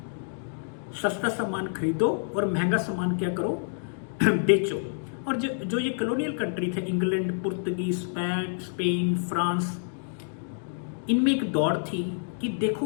सस्ता सामान खरीदो और महंगा सामान क्या करो, बेचो। और जो ये कॉलोनियल कंट्री थे, इंग्लैंड, पुर्तगीज, स्पेन, फ्रांस, इनमें एक दौड़ थी कि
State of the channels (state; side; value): silent; right; digital silence